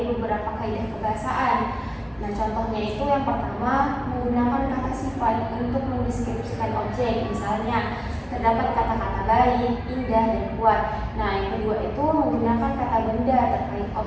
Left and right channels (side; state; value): both; identical; correlation 1.00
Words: beberapa kaidah kebahasaan. Nah, contohnya itu yang pertama menggunakan kata sifat untuk mendeskripsikan objek. Misalnya, terdapat kata-kata baik, indah, dan kuat. Nah, yang kedua itu menggunakan kata benda terkait